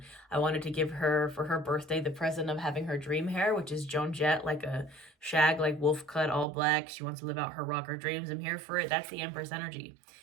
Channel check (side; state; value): left; drops out; at 6.5 s